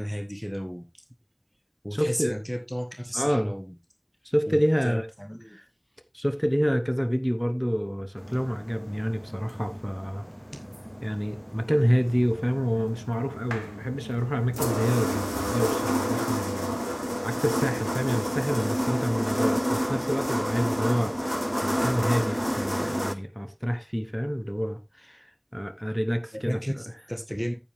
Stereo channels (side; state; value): both; identical; correlation 1.00